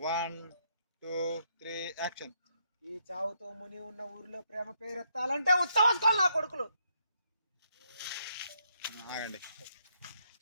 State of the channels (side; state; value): both; inverted; correlation -0.75